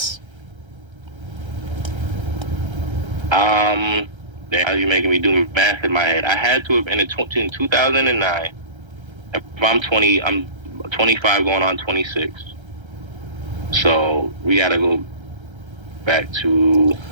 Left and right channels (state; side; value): late; left; 1.3 ms